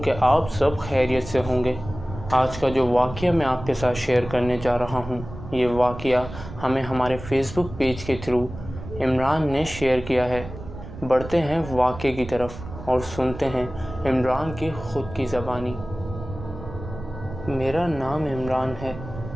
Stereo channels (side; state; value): right; noise; rumble, 12 dB below the sound